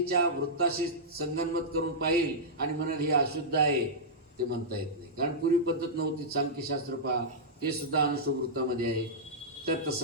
वृत्ताशी संगनमत करून पाहिल आणि म्हणाल हे अशुद्ध आहे, ते म्हणता येत नाही. कारण पूर्वी पद्धत नव्हती. सांख्यशास्त्र पहा, ते सुद्धा अनुष्टुप वृत्तामध्ये आहे. तर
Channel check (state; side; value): normal; both; correlation -0.10